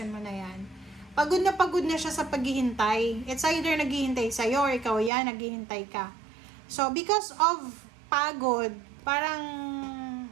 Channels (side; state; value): left; drops out; at 5.1 s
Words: mo na yan. Pagod na siya sa paghihintay. It's either naghihintay sa'yo, or ikaw yan, naghihintay ka. So, because of pagod, parang